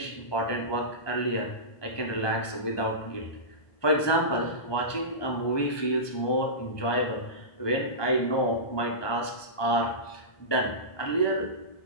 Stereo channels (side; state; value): right; late; 1.2 ms